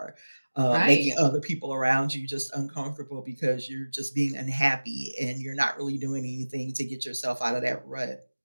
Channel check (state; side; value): inverted; both; correlation -1.00